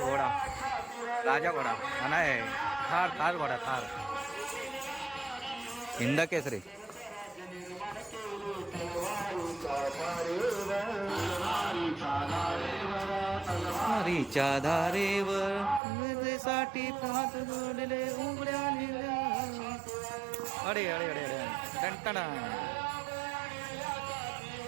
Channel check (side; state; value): left; drops out; at 15.8 s